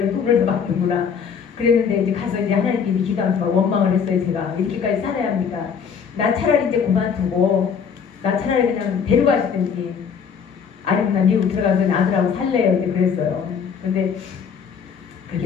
돈을 받는구나. 그랬는데 이제 가서 이제 하나님께 기도하면서 원망을 했어요. 제가 이렇게까지 살아야 합니까? 나 차라리 이제 그만두고 나 차라리 그냥 데려가시든지 아니면 나 미국 들어가서 아들하고 살래요. 이제 그랬어요. 근데 그렇게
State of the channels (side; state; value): right; quieter; 6.7 dB